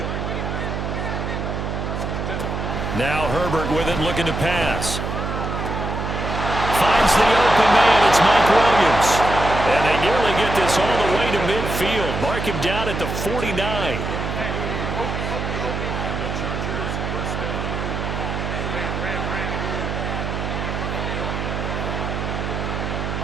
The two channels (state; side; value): noise; right; hum, 3 dB below the sound